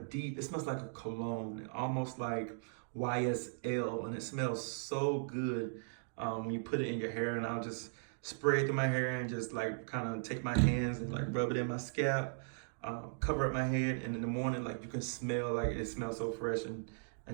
it smells like a cologne, almost like YSL, and it smells so good when you put it in your hair. And I'll just spray it through my hair and just like kind of take my hands and like rub it in my scalp. Cover up my head, and in the morning, like you can smell, like it smells so fresh and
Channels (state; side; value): silent; left; digital silence